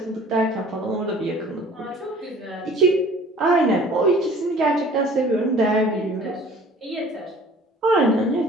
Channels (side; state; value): both; normal; correlation 0.49